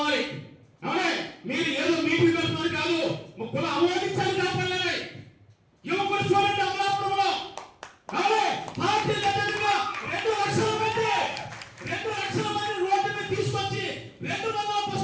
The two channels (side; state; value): both; identical; correlation 1.00